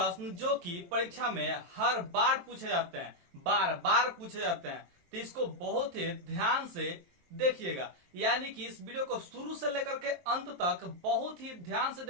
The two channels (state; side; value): late; left; 23 ms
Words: जो कि परीक्षा में हर बार पूछे जाते हैं, बार बार पूछे जाते हैं, तो इसको बहुत ही ध्यान से देखिएगा। यानी कि इस वीडियो को शुरू से लेकर के अंत तक बहुत ही ध्यान से